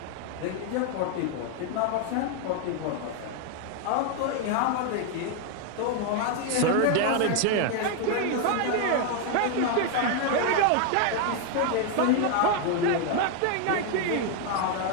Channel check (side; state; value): both; different; correlation 0.01